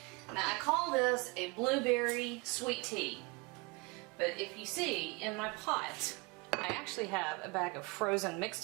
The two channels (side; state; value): left; quieter; 27.6 dB